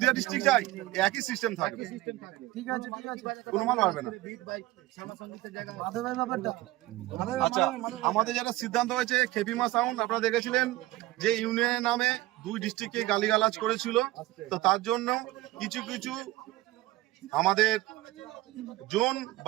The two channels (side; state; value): left; quieter; 17.7 dB